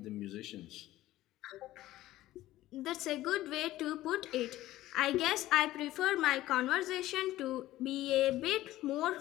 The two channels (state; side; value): quieter; right; 15.6 dB